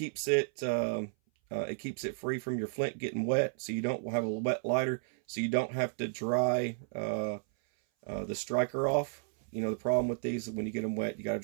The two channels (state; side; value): silent; left; 56 dB below the other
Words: it free from your flint getting wet, so you don't have a wet lighter, so you don't have to dry the striker off. You know, the problem with these is when you get them wet, you got to